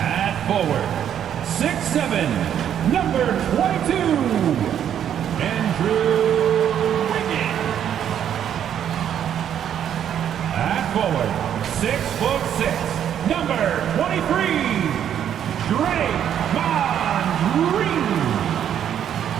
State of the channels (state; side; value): quieter; left; 9.6 dB